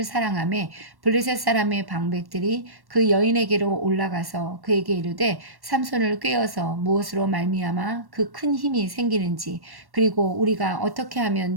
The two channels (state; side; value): late; left; 1.1 ms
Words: 사랑하며 블레셋 사람의 방백들이 그 여인에게로 올라가서 그에게 이르되 삼손을 꾀어서 무엇으로 말미암아 그 큰 힘이 생기는지 그리고 우리가 어떻게 하면